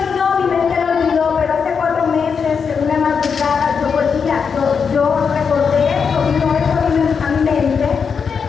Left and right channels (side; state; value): right; quieter; 6.1 dB